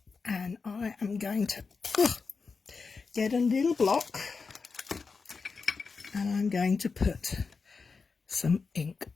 and I am going to get a little block, and I'm going to put some ink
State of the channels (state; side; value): quieter; right; 4.8 dB